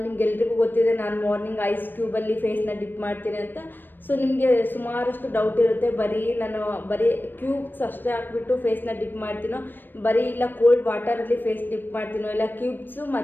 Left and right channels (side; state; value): right; late; 0.094 ms